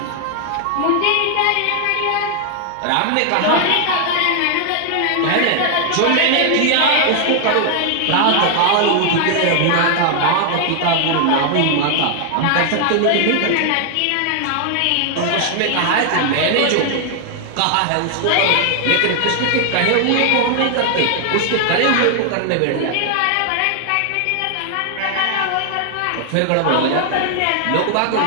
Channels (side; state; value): both; different; correlation 0.00